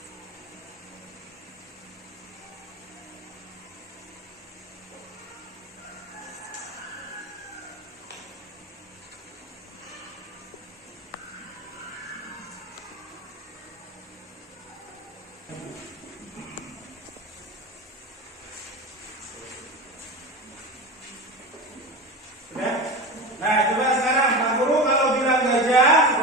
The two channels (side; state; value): both; normal; correlation 0.26